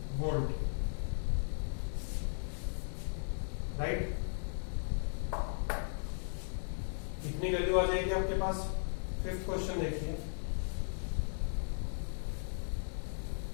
वोल्ट, राइट। इतनी वैल्यू आ जाएगी आपके पास। फिफ्थ क्वेश्चन देखिए,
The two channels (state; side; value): silent; right; 53 dB below the other